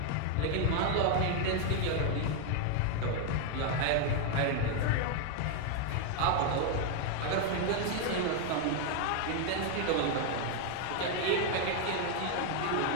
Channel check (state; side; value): different; both; correlation 0.01